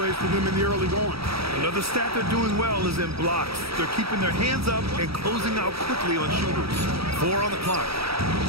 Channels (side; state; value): left; late; 0.76 ms